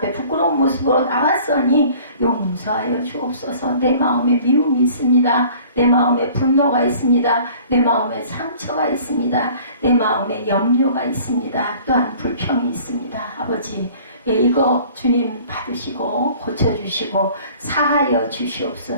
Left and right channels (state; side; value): inverted; both; correlation -0.50